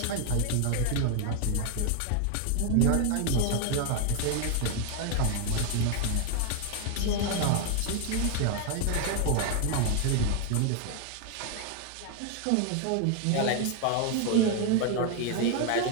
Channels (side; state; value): both; different; correlation 0.00